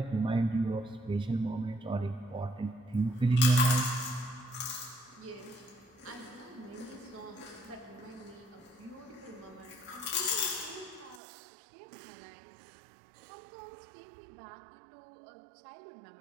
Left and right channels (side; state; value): left; drops out; at 11.2 s